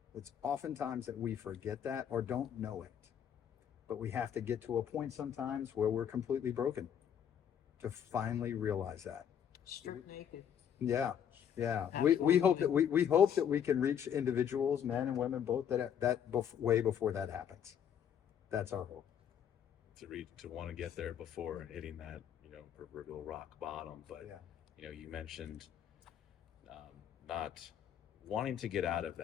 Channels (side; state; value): right; quieter; 8.8 dB